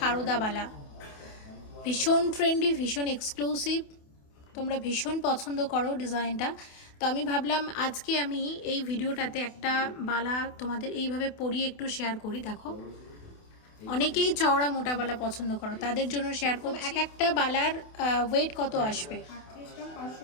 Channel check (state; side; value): late; right; 28 ms